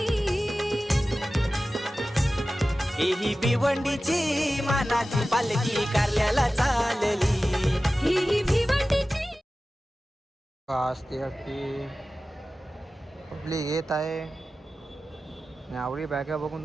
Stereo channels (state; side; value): normal; both; correlation 0.95